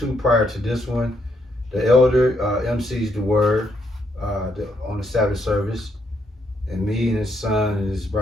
prior to this one, the elder MCs the word on the Sabbath service, and me and his son and his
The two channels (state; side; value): normal; both; correlation 0.75